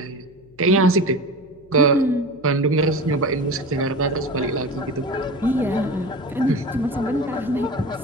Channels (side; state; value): left; noise; hum, 28 dB below the sound